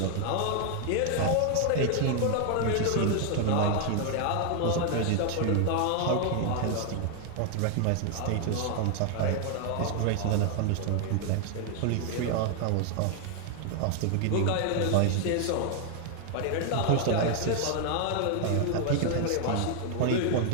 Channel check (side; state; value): both; different; correlation 0.00